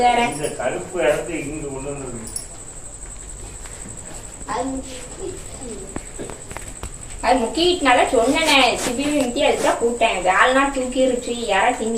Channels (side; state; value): both; identical; correlation 1.00